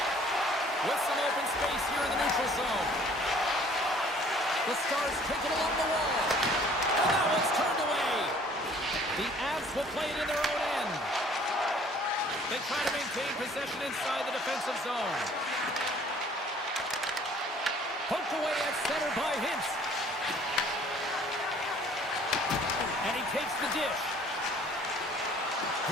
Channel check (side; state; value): both; normal; correlation 0.55